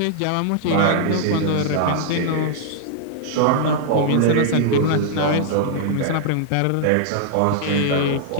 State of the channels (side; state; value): both; different; correlation -0.01